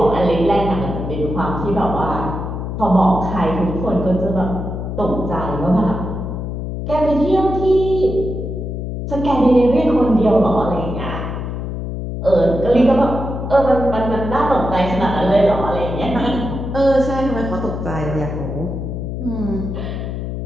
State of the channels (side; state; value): left; noise; hum, 5 dB below the sound